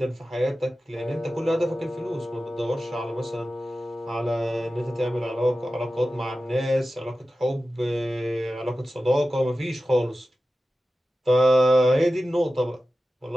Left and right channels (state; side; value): normal; both; correlation 0.94